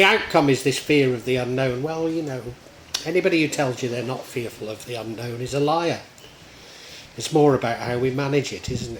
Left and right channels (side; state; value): both; identical; correlation 1.00